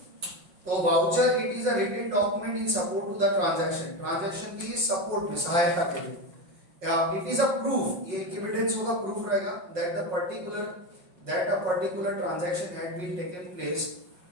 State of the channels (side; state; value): left; late; 5.6 ms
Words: तो voucher it is a written document in support to the transaction, transaction की सपोर्ट में, सहायता के लिए। इट इज अ प्रूफ, ये एविडेंस होगा, प्रूफ रहेगा that a particular transaction had been taken